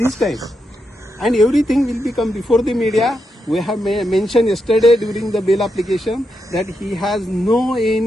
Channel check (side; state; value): both; normal; correlation 0.84